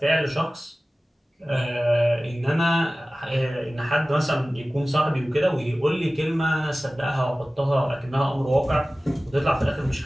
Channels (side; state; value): both; normal; correlation 0.97